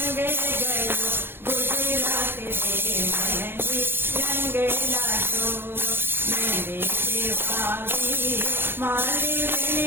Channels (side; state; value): left; late; 0.10 ms